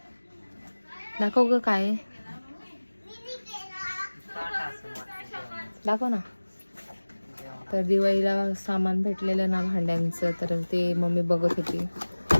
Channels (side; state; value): both; inverted; correlation -1.00